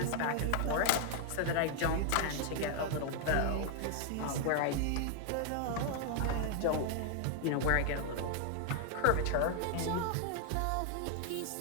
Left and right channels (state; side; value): different; both; correlation 0.00